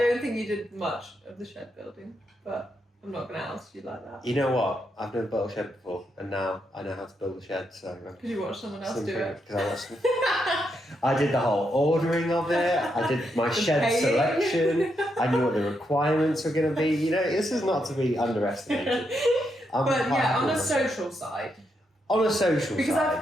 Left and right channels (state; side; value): normal; both; correlation 0.81